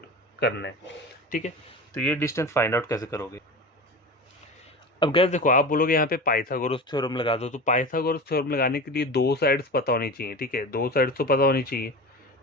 करना है। ठीक है, तो ये डिस्टेंस फाइंड आउट कैसे करोगे। अब गैस देखो, आप बोलोगे यहाँ पे पाइथागोरस थ्योरम लगा दो। तो पाइथागोरस थ्योरम लगाने के लिए 2 साइड्स पता होनी चाहिए। ठीक है, 2 साइड्स तो पता होनी चाहिए।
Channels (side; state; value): both; normal; correlation 0.30